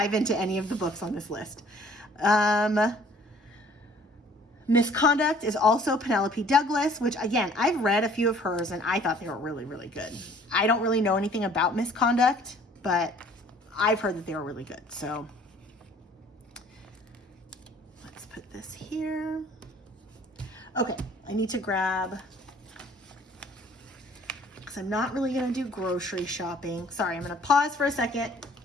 into any of the books on this list. Misconduct is also Penelope Douglas, which again, I've read a few of hers and I thought they were really, really good. I don't really know anything about Misconduct, but I've heard that they were really good. So let's put this here. Okay, I need to grab because I'm not really gonna do grocery shopping. Sorry, I'm gonna pause for a second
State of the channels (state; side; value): normal; both; correlation 0.55